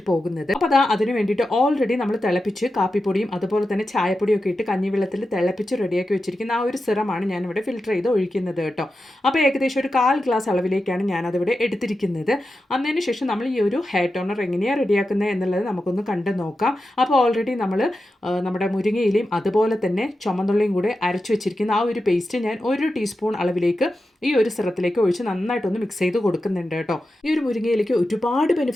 പോകുന്നത്. അപ്പോൾ അതിന് വേണ്ടിയിട്ട് ഓൾറെഡി നമ്മൾ തിളപ്പിച്ച് കാപ്പിപ്പൊടിയും അതുപോലെ തന്നെ ചായപ്പൊടിയും ഒക്കെ ഇട്ട് കഞ്ഞിവെള്ളത്തിൽ തിളപ്പിച്ച് റെഡിയാക്കി വെച്ചിരിക്കുന്ന ആ ഒരു സിറമാണ് ഞാനിവിടെ ഫിൽറ്റർ ചെയ്ത് ഒഴിക്കുന്നത് കേട്ടോ. അപ്പോൾ ഏകദേശം ഒരു 1/4 ഗ്ലാസ് അളവിലേക്കാണ് ഞാനതിവിടെ എടുത്തിരിക്കുന്നത്. അതിന് ശേഷം നമ്മൾ ഈ ഒരു ഹെയർ ടോണർ എങ്ങനെയാണ് റെഡിയാക്കുന്നത് എന്നുള്ളത് നമുക്കൊന്ന് കണ്ടു നോക്കാം. അപ്പോൾ ഓൾറെഡി നമ്മൾ നമ്മുടെ മുരിങ്ങയിലയും അതുപോലെ തന്നെ ചുമന്നുള്ളിയും കൂടെ അരച്ചു വെച്ചിരിക്കുന്ന ആ ഒരു പേസ്റ്റ് ഞാൻ 1 ടീസ്പൂൺ അളവിലേക്ക് ഈ ഒരു സിറത്തിലേക്ക് ഒഴിച്ച് നന്നായിട്ടൊന്ന് മിക്സ് ചെയ്ത് കൊടുക്കുന്നുണ്ട് കേട്ടോ. ഈ ഒരു മുരിങ്ങയിലേക്ക് ഒരുപാട്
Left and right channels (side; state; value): both; normal; correlation 0.91